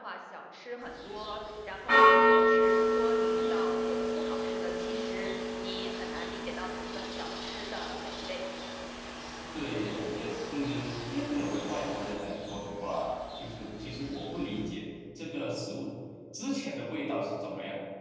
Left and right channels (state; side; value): identical; both; correlation 1.00